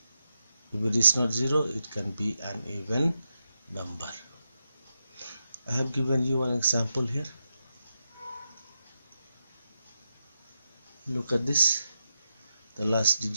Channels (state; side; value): inverted; both; correlation -0.86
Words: if it is not 0, it can be an even number. I have given you an example here. Look at this. The last